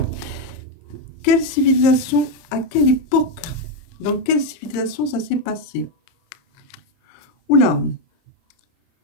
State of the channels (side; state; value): right; late; 30 ms